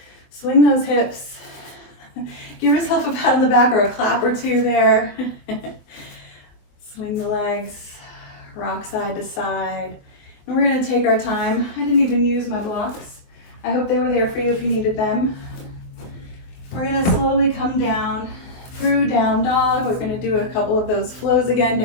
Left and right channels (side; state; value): right; late; 23 ms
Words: Swing those hips. Give yourself a pat on the back or a clap or two there. Swing the legs, rock side to side. And we're going to take our time. I didn't even use my blocks. I hope they were there for you if you needed them. We're going to slowly come down through down dog. We're going to do a couple of those flows again.